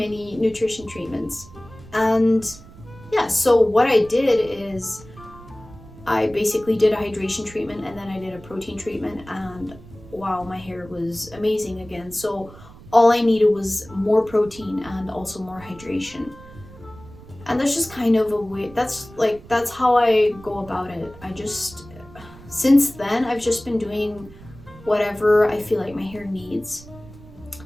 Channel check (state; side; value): noise; right; rumble, 20 dB below the sound